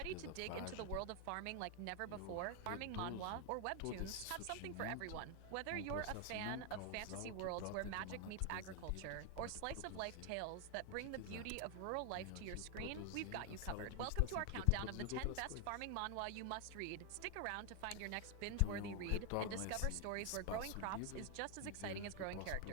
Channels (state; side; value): different; both; correlation 0.00